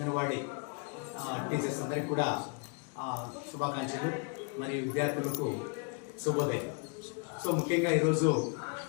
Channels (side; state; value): right; quieter; 36.9 dB